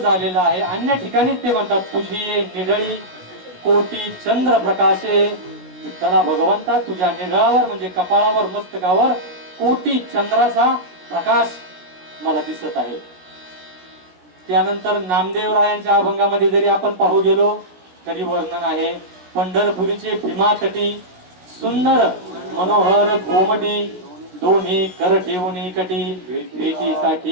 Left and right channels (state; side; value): late; left; 17 ms